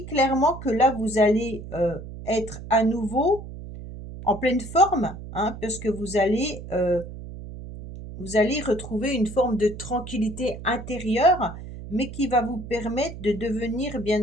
clairement que là, vous allez être à nouveau en pleine forme, hein, parce que vous allez retrouver une forme de tranquillité intérieure, mais qui va vous permettre de devenir,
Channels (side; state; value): right; noise; hum, 12 dB below the sound